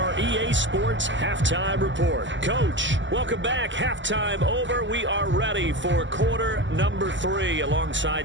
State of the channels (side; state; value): left; late; 0.54 ms